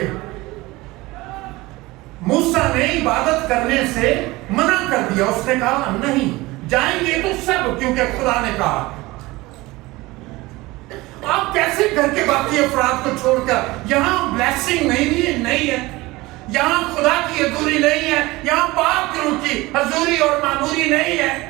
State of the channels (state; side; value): quieter; left; 20.7 dB